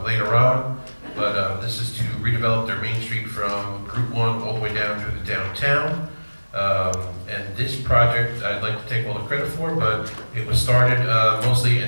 later on, but this is to redevelop their Main Street from Route 1 all the way down through the downtown. And this project, I'd like to take all the credit for, but it was started mostly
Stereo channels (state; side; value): inverted; both; correlation -1.00